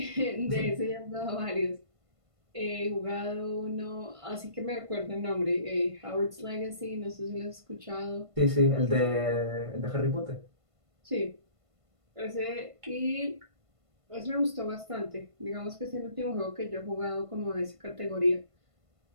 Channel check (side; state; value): left; late; 1.5 ms